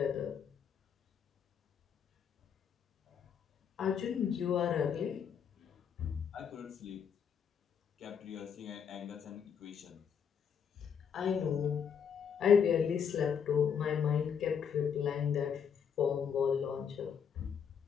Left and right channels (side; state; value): right; quieter; 7.4 dB